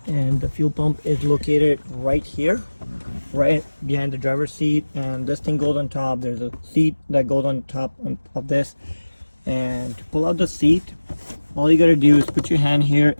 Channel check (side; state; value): both; inverted; correlation -1.00